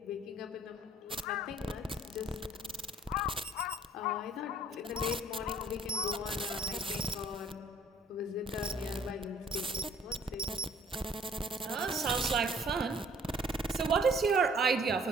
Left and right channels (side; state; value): both; normal; correlation 0.57